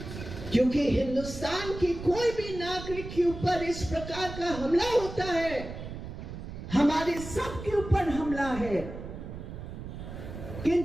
क्योंकि हिंदुस्तान की कोई भी नागरिक के ऊपर इस प्रकार का हमला होता है, हमारे सब के ऊपर हमला है।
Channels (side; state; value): right; noise; rumble, 10 dB below the sound